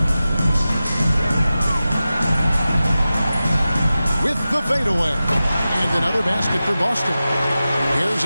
With the fadeaway. And another basket for Boston. Here's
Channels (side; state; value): both; inverted; correlation -0.94